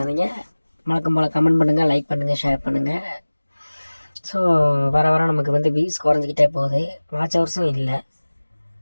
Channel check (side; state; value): both; inverted; correlation -1.00